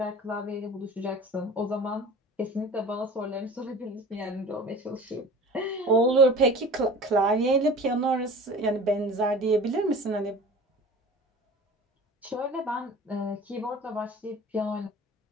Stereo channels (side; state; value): both; normal; correlation 0.41